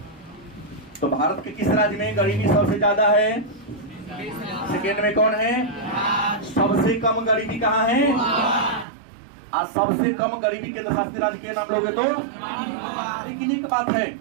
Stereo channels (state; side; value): drops out; left; at 8.8 s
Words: तो भारत के किस राज्य में गरीबी सबसे ज्यादा है? सेकेंड में कौन है? सबसे कम गरीबी कहां है? आज सबसे कम गरीबी केंद्र शासित राज्य के नाम लोगे तो। लेकिन एक बात है